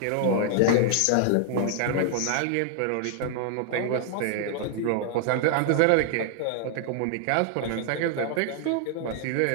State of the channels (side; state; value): both; different; correlation 0.00